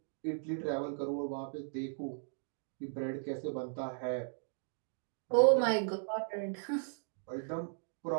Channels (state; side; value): silent; left; digital silence